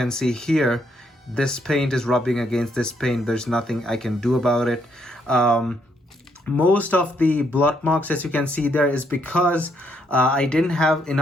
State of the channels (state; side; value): normal; both; correlation 0.73